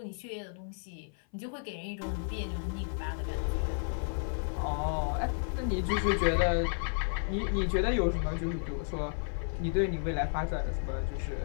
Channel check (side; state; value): right; silent; 56 dB below the other